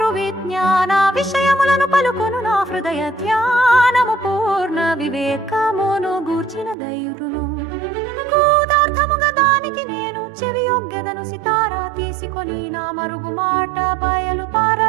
విజ్ఞాన విషయములను పలుకొను నా హృదయ ధ్యానము పూర్ణ వివేకమును గూర్చిన ధైర్యును. గూఢార్థముగా దానికి నేను చెవియొగ్గెదను, సితారా తీసుకొని నా మరుగు మాట బయలు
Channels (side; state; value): left; drops out; at 6.8 s